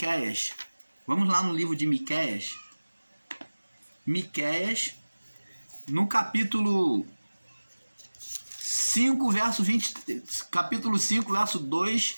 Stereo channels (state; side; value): inverted; both; correlation -1.00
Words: Vamos lá no livro de Miqueias. Miqueias, no capítulo 5, verso 20, capítulo 5, verso 2